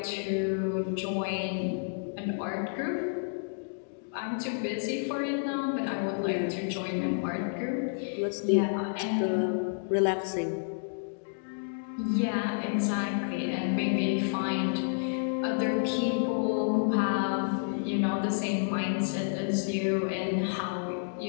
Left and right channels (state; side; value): silent; right; digital silence